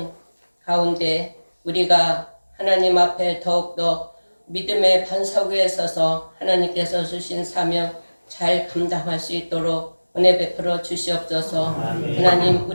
가운데 우리가 하나님 앞에 더욱더 믿음의 반석 위에 서서 하나님께서 주신 사명 잘 감당할 수 있도록 은혜 베풀어 주시옵소서. 하나님,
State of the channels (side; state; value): both; inverted; correlation -1.00